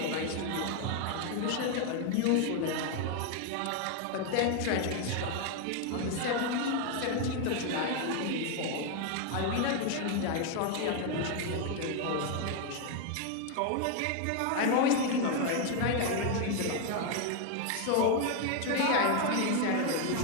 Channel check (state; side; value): different; both; correlation 0.01